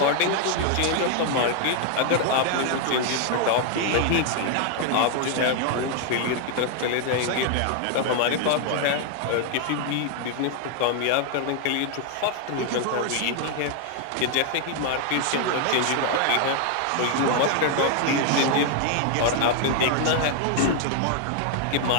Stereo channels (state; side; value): different; both; correlation 0.00